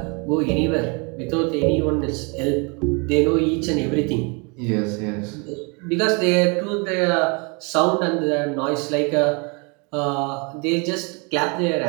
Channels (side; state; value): left; quieter; 32.1 dB